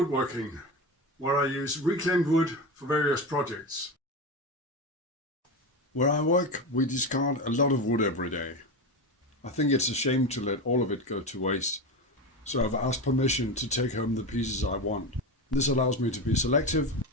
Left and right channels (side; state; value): both; normal; correlation 0.20